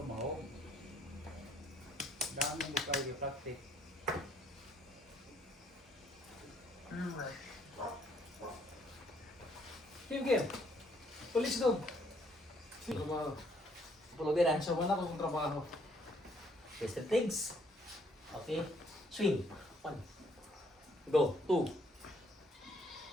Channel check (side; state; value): both; normal; correlation 0.67